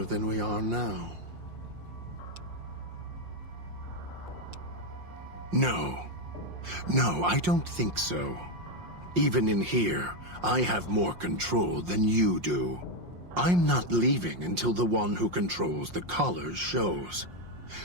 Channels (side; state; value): left; late; 5.6 ms